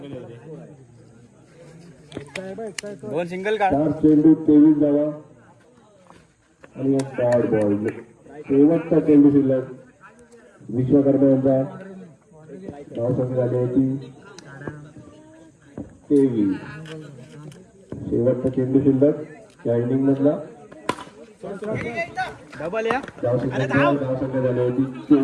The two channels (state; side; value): identical; both; correlation 1.00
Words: दोन सिंगल का 4 चेंडू 23 धावा आणि एक डॉट बॉल. शेवटचा चेंडू शिल्लक विश्वकर्मा यांचा धावसंख्या झाली होती 23. शेवटचा चेंडू शिल्लक या इनिंग मधला डबल या धावसंख्या झाली होती